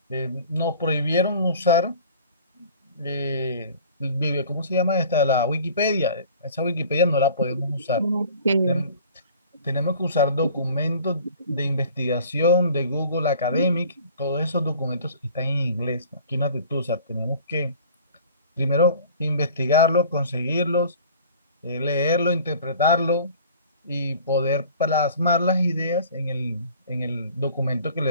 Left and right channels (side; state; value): both; inverted; correlation -0.48